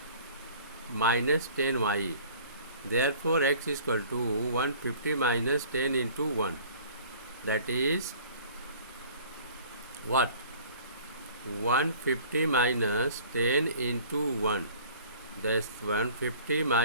minus 10Y. Therefore x is equal to 150 minus 10 into 1. That is what? 150 minus 10 into 1. That's 150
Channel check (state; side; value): inverted; both; correlation -0.49